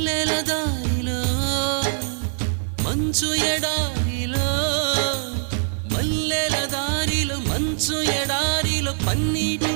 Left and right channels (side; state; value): left; silent; digital silence